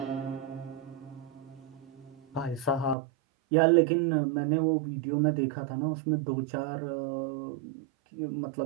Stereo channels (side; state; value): left; drops out; at 3.0 s